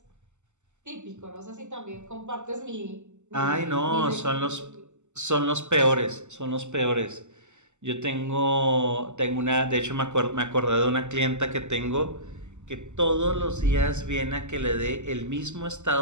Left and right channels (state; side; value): late; left; 0.83 ms